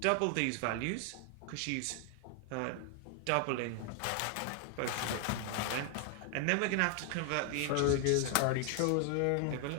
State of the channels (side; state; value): both; different; correlation 0.00